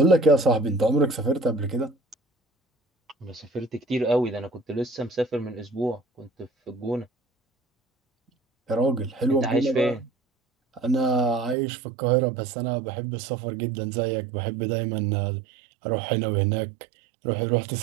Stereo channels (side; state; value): left; drops out; at 11.6 s